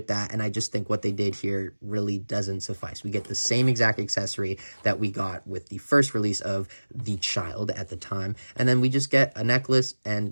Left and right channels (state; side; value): inverted; both; correlation -1.00